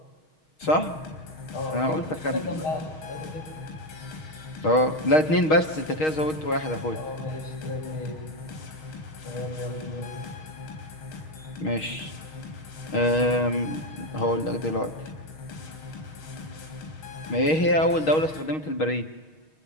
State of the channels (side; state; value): right; late; 6.4 ms